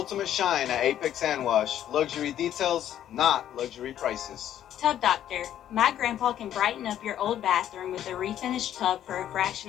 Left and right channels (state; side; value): quieter; right; 11.1 dB